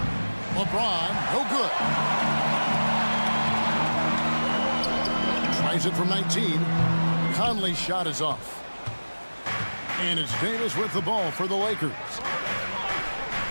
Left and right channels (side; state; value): both; inverted; correlation -1.00